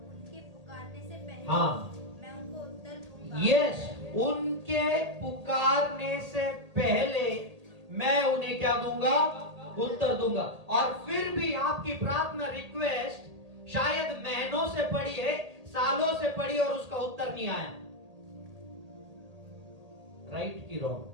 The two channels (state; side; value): late; left; 1.8 ms